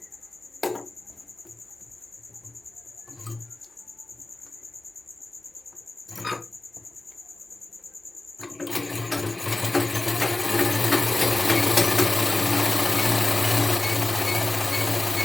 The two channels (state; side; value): quieter; right; 3.0 dB